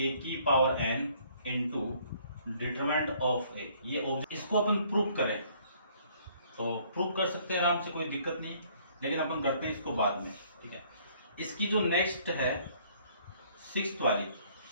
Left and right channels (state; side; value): inverted; both; correlation -0.61